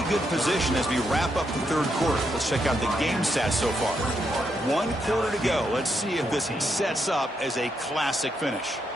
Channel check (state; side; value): normal; both; correlation 0.80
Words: good position as we wrap up the third quarter. Let's check out the game stats so far. 1 quarter to go. Let's see if this sets up as a classic finish.